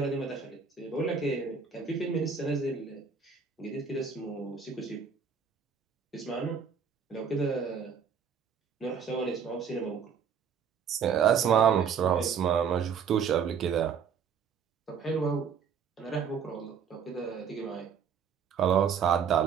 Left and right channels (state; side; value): quieter; left; 6.8 dB